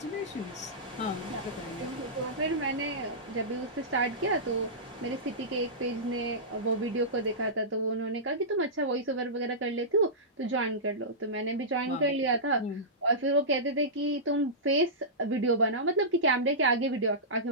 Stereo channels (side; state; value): both; normal; correlation -0.17